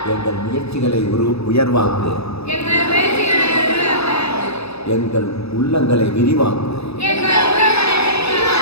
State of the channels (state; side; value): late; right; 0.79 ms